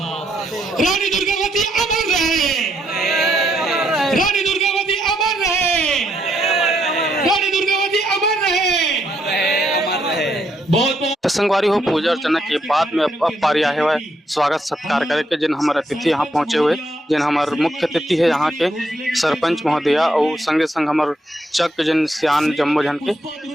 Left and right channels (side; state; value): both; normal; correlation 0.76